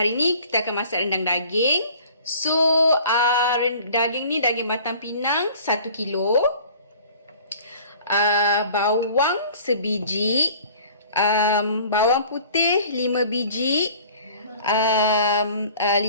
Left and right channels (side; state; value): both; inverted; correlation -0.49